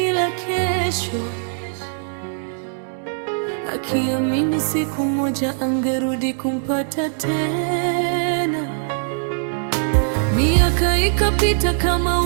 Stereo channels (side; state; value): left; silent; digital silence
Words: la kesho, akiamini siku moja angerudi kumpata tena. Miaka ikapita